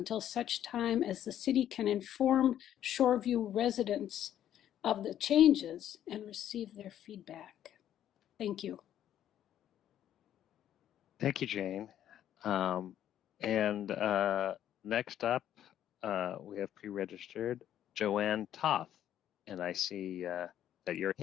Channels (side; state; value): right; quieter; 11.0 dB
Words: such time as the city can inform Shoreview residents of the changes and receive their feedback. Thank you. Thank you, Jane. Next up, we have pre-registered Joanne Toth, and I see that you're